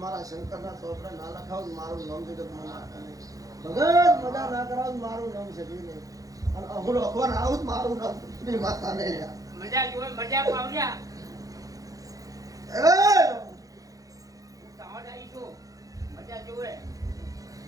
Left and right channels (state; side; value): late; left; 0.17 ms